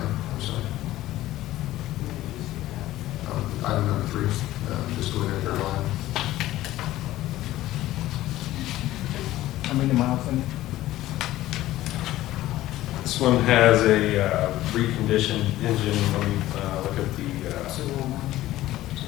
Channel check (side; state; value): right; quieter; 15.4 dB